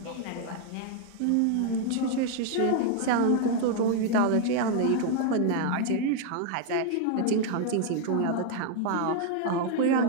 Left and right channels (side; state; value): both; different; correlation 0.00